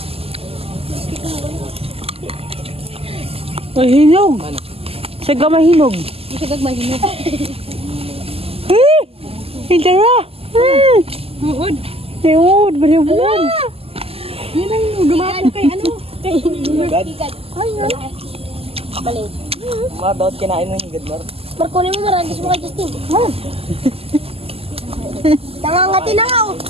Ay, hinog. Saga mahinog. Isa gagmay hinog. Hindi na. Muod. Ayun, balibuan. Yan ang dumaan kay ano? Kay Balik. Mga daot kinain mo yung gadmar. Markunin mo maragis mo kay Justin. Nangangati na nga.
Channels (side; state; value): left; late; 0.29 ms